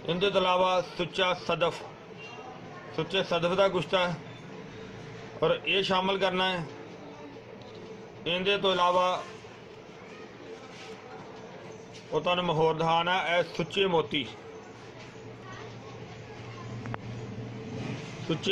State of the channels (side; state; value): both; identical; correlation 1.00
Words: इलावा सुच्चा सदफ, सुच्चे सदफ का गुश्ता है और ये शामिल करना है। इहदे तो इलावा वो तुहानूं होर दिखाना है सुच्चे मोती,